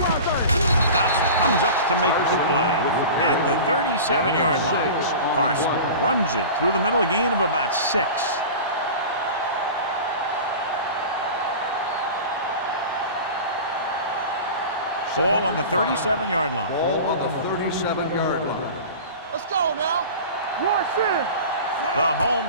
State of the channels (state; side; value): inverted; both; correlation -0.34